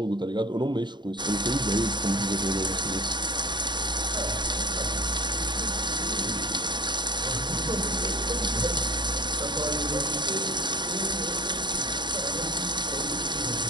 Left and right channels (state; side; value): late; left; 0.22 ms